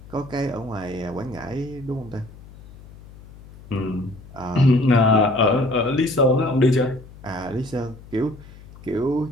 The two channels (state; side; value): noise; left; hum, 20 dB below the sound